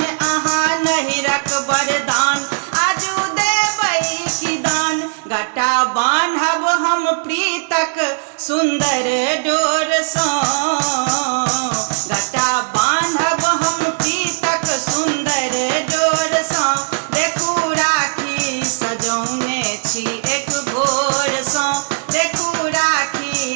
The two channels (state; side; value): silent; left; digital silence